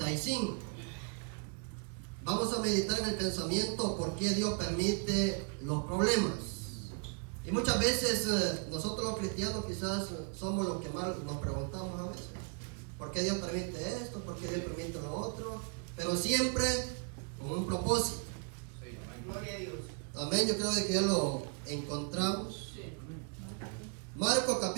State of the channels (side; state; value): left; quieter; 36.3 dB